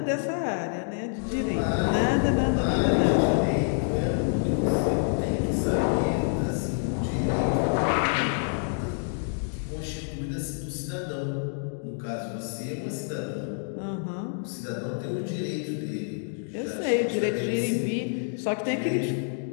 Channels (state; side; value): silent; right; digital silence